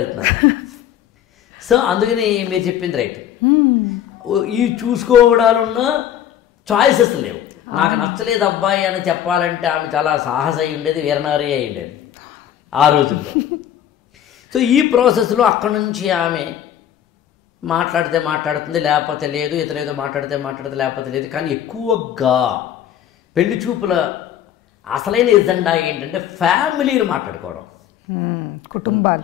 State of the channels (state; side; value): quieter; right; 10.4 dB